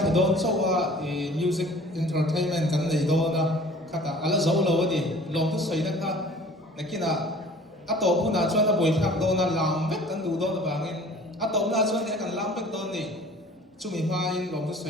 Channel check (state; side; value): normal; both; correlation 0.48